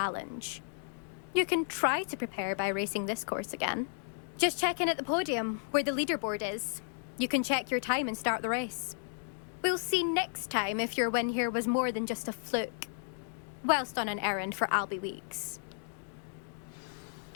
You can try to prepare by racing this course again. Just check in at the podium, where the leaderboard is. You can check your time and start the race. We'll see next time if your win here was more than just a fluke. Whilst on an errand for Albie Weeks.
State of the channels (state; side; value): silent; right; digital silence